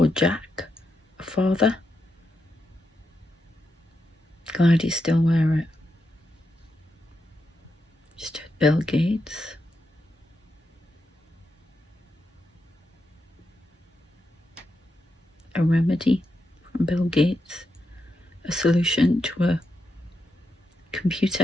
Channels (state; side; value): normal; both; correlation 0.85